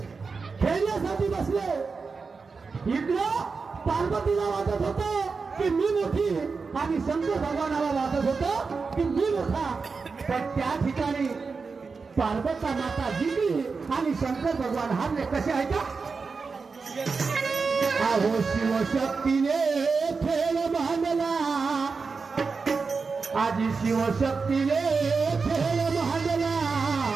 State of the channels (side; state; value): left; quieter; 4.7 dB